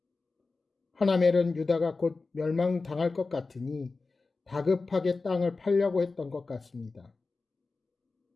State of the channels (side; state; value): right; quieter; 3.9 dB